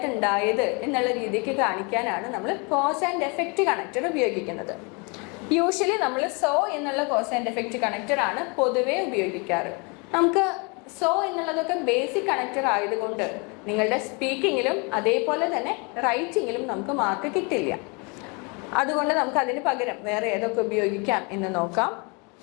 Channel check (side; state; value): right; quieter; 31.4 dB